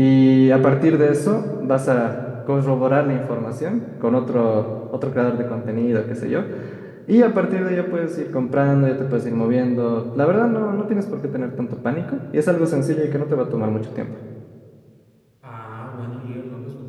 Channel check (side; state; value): both; identical; correlation 1.00